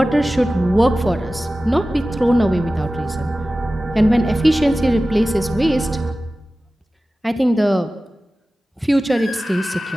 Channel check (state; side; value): normal; both; correlation 0.96